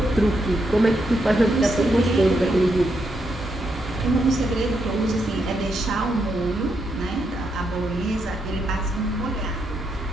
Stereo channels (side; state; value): both; normal; correlation 0.80